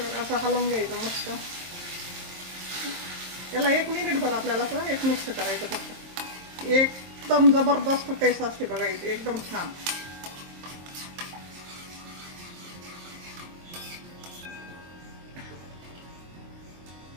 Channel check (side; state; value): left; late; 23 ms